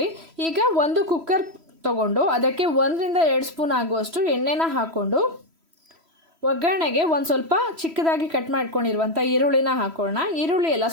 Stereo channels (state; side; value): late; left; 3.1 ms